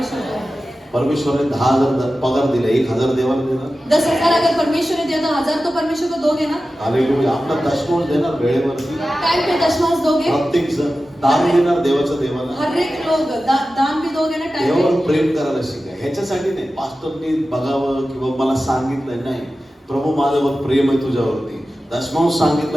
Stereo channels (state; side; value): normal; both; correlation 0.94